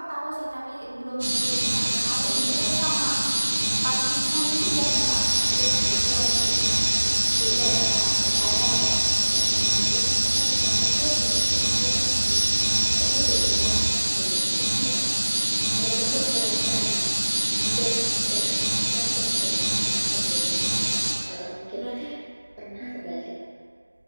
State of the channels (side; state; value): both; inverted; correlation -1.00